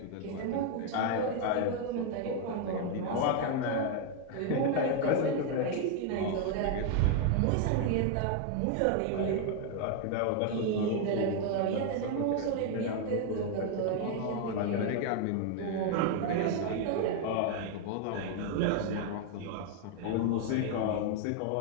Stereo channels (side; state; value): both; different; correlation 0.00